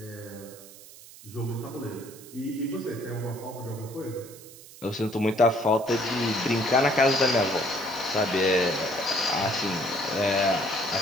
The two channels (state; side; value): noise; right; hiss, 19 dB below the sound